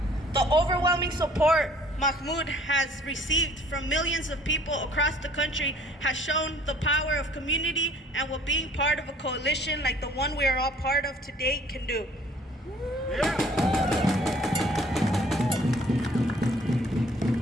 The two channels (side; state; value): both; normal; correlation 0.56